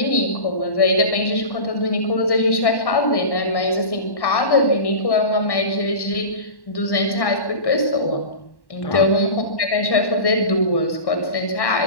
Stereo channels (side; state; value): right; late; 1.1 ms